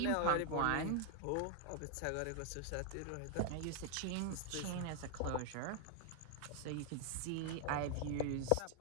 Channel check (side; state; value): both; different; correlation 0.00